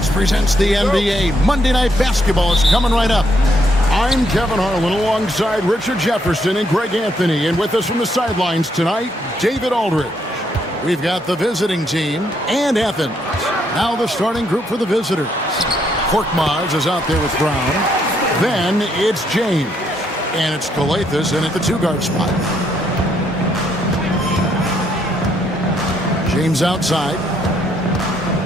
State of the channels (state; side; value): normal; both; correlation 0.73